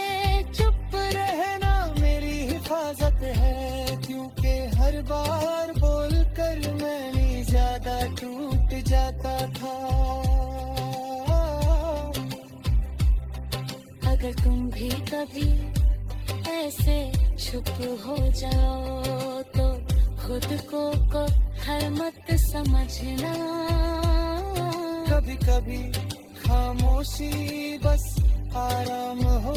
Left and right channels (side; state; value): both; identical; correlation 1.00